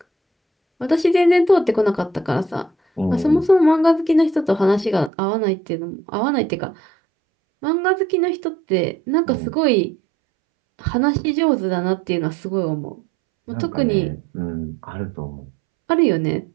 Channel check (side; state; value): left; drops out; at 5.1 s